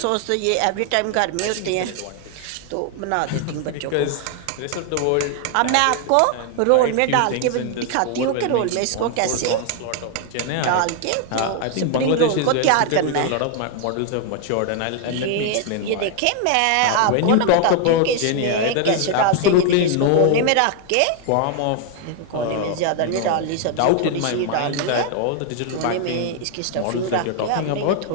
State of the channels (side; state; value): both; different; correlation 0.00